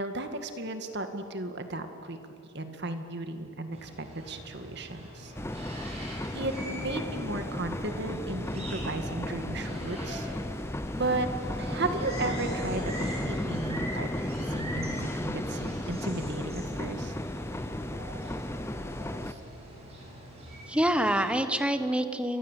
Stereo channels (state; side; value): normal; both; correlation 0.55